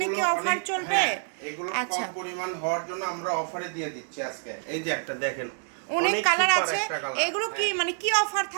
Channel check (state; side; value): silent; left; 60 dB below the other